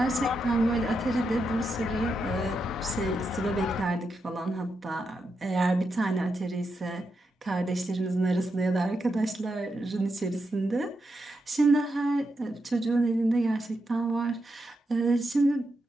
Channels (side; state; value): both; normal; correlation 0.85